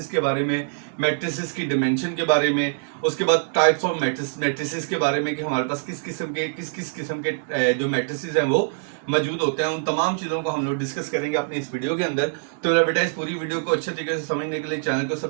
के बारे में, मैट्रिसेस की डिमेंशन के बारे में, उसके बाद टाइप्स ऑफ मैट्रिसेस के बारे में कि हमारे पास किस किस्म के जो मैट्रिसेस हैं वो मौजूद होते हैं। उन तमाम चीज़ों को हम लोग डिस्कस करेंगे अपनी इस वीडियो के अंदर। तो मेरा बेटा, इस पूरी वीडियो को अच्छे तरीके से समझने के लिए चैनल को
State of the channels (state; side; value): silent; left; digital silence